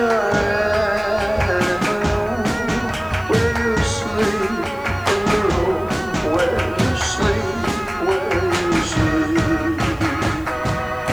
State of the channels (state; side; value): noise; left; hiss, 27 dB below the sound